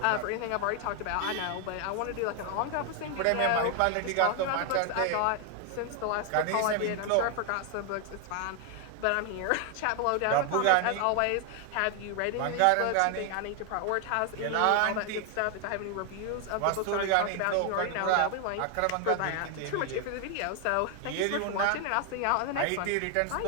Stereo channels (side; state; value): both; different; correlation 0.00